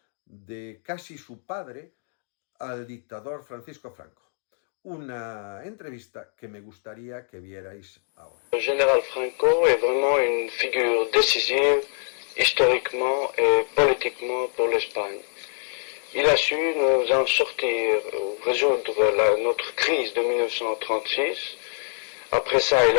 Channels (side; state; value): right; silent; 62 dB below the other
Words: de casi su padre al dictador Francisco Franco. Una entrevista que me gustaría que vierais ahora. Le général Franco est vraiment une figure décisive historiquement et politiquement pour l'Espagne. Il a su nous en sortir, résoudre notre crise de 1936. Après ça, il